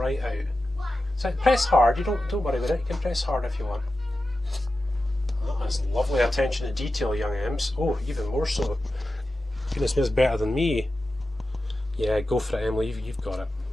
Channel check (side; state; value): both; normal; correlation 0.92